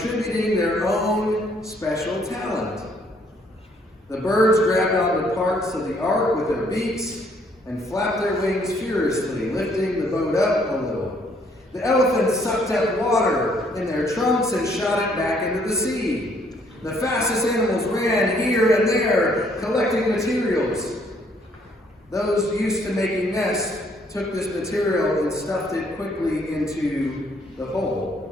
their own special talent. The birds grabbed onto parts of the ark with their beaks and flapped their wings furiously, lifting the boat up a little. The elephants sucked up water in their trunks and shot it back into the sea. The fastest animals ran here and there, collecting materials. Those used to making nests took this material and stuffed it quickly into the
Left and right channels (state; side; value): normal; both; correlation 0.66